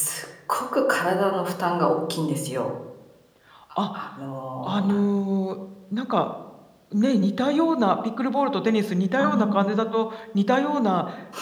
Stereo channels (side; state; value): both; identical; correlation 1.00